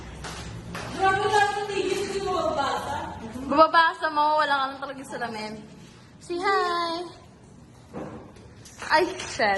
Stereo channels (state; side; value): identical; both; correlation 1.00